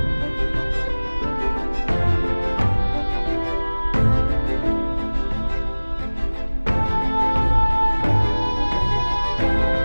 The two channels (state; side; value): inverted; both; correlation -1.00